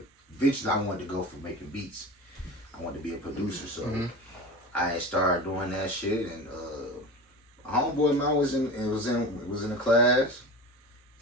eventually I wanted to go for making beats. I wanted to be a producer, so I started doing that shit. And a homeboy of mine was in a class,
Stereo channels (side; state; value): both; normal; correlation 0.31